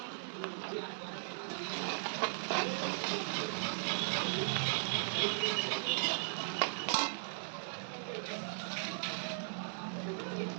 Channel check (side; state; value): left; silent; digital silence